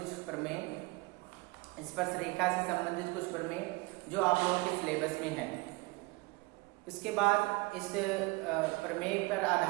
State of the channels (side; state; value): left; quieter; 24.9 dB